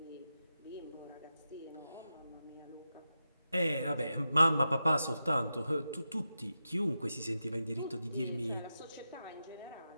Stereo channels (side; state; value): both; inverted; correlation -0.90